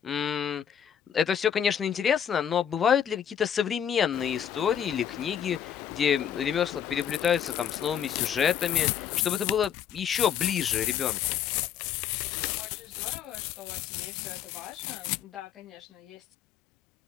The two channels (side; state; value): right; quieter; 8.9 dB